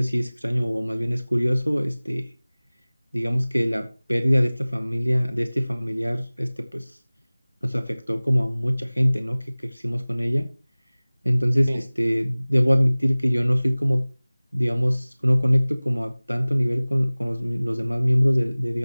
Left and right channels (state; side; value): inverted; both; correlation -0.99